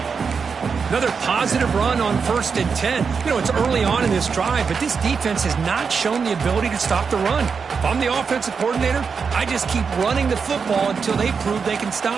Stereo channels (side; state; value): left; quieter; 5.7 dB